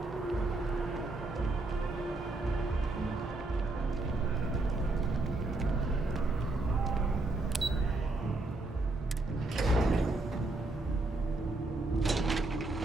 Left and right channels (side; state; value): left; quieter; 3.0 dB